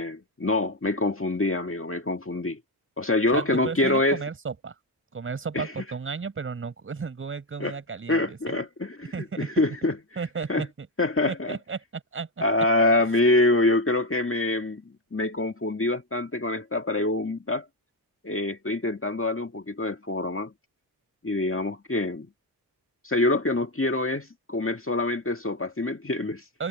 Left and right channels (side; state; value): both; normal; correlation 0.09